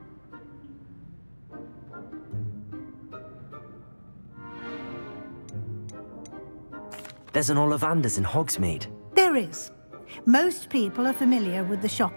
There's an Ollivander's in Hogsmeade. There is. Most people are familiar with the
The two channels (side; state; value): both; inverted; correlation -1.00